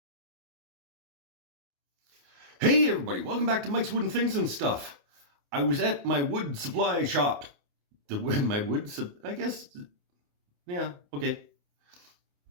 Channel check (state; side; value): late; left; 28 ms